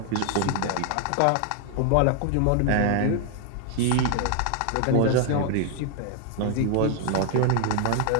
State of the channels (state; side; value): different; both; correlation 0.00